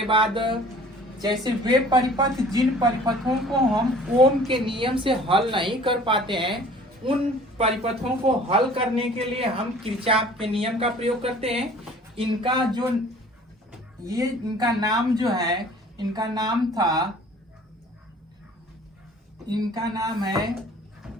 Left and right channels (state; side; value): normal; both; correlation 0.49